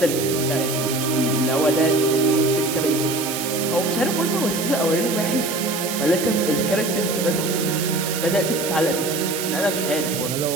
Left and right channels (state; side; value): noise; right; hiss, 5 dB below the sound